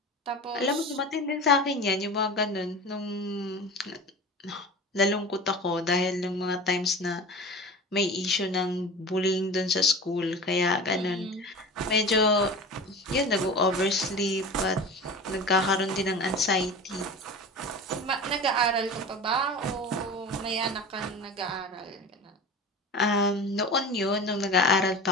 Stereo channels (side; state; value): both; normal; correlation 0.33